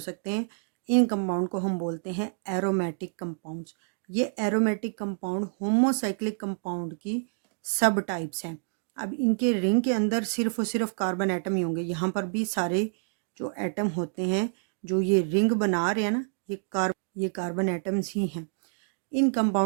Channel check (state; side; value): silent; left; digital silence